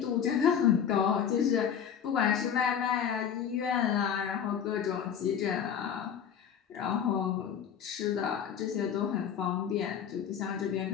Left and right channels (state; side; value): quieter; right; 8.2 dB